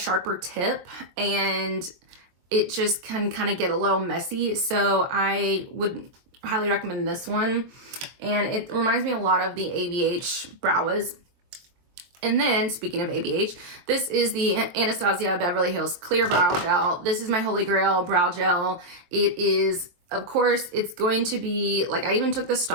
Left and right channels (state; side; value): late; left; 22 ms